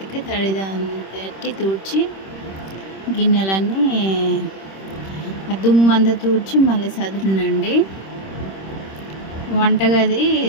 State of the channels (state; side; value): late; right; 26 ms